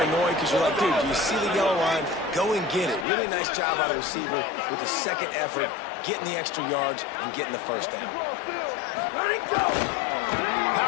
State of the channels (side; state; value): right; drops out; at 3.1 s